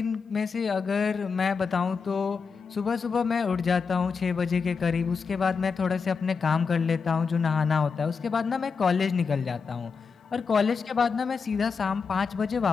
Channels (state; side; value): quieter; right; 5.3 dB